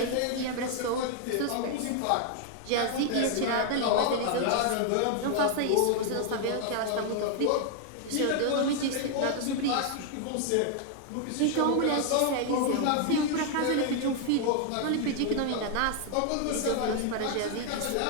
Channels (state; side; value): different; both; correlation 0.00